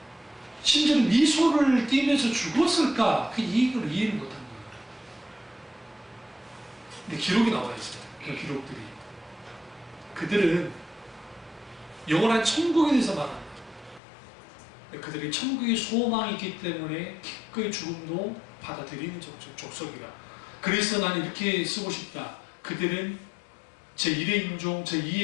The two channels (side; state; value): right; drops out; at 14.0 s